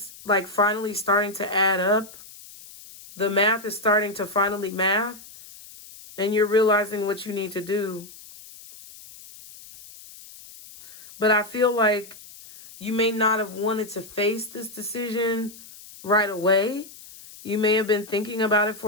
like finally starting to add up. The math is starting to finally math, and you're realizing what you need to do. But I feel like you may not have wanted to face this decision right away. You may have been thinking about it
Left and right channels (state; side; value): noise; left; hiss, 19 dB below the sound